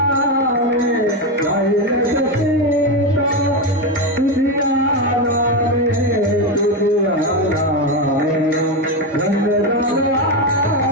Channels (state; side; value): normal; both; correlation 0.12